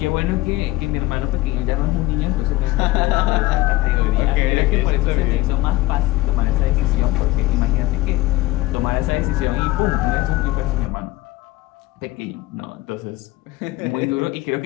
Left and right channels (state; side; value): quieter; right; 17.8 dB